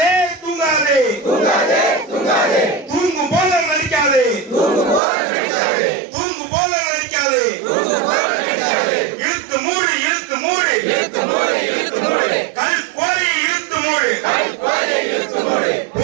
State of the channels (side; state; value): left; drops out; at 5.0 s